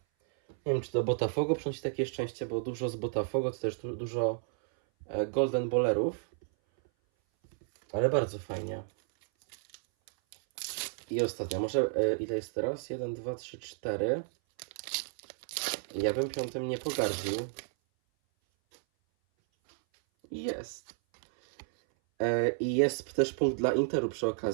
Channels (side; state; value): left; silent; 56 dB below the other